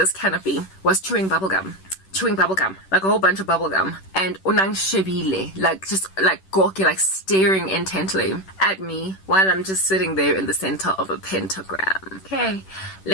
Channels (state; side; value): late; right; 10 ms